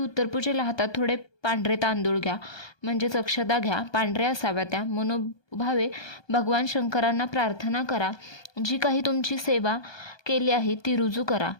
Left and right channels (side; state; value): right; late; 1.2 ms